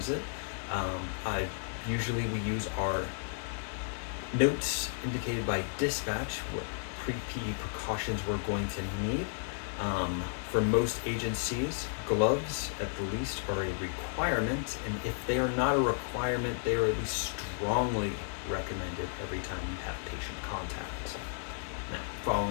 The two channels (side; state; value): right; silent; digital silence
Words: it. Usually we use our notes indicated by dispatch what PPE precautions we're going to need. For most agencies, gloves at the least are a requirement, and if they are not a requirement, they are at least strongly recommended every time you have patient contact. Now,